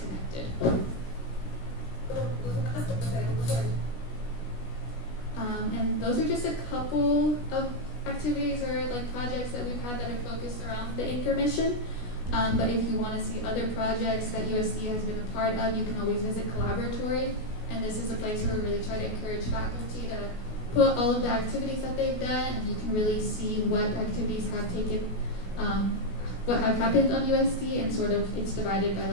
And those are just a couple of activities or like projects that we've had that are focused around the anchor mission. But if you want to see other projects that USD has been a part of, you can always visit Collaboratory. And this is a place where we really try to encourage faculty to put all of the activities that they've done, and you can really see what activities have taken, what have happened on USD, and sort of it's divided by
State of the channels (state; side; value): late; right; 16 ms